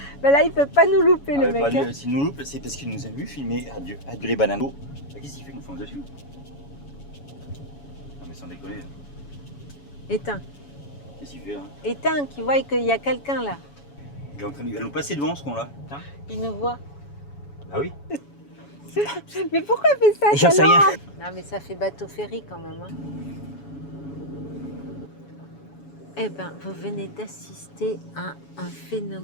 Mais là, il peut pas nous louper, Ah, ouais, pas s'il nous loupe, c'est parce qu'il nous a vu filmer Adieu les bananes. Bah, qu'est-ce qu'il fait? Il nous fonce dessus. Non mais sans déconner. Éteins. Qu'est-ce qu'il fait là? Éteins, qui voient qu'il y a quelqu'un là. Il va nous passer devant ce con-là. Putain. Il nous voit. Ah oui. Mais pourquoi il fait ça? J'en sais rien. Non, mais ça fait bateau ferry quand même. Hein. Eh ben, vous venez d'assister à un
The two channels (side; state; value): right; late; 7.1 ms